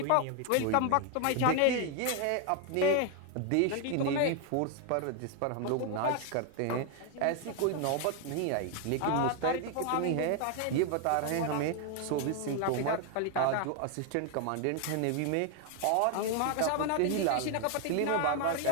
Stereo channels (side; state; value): both; different; correlation 0.00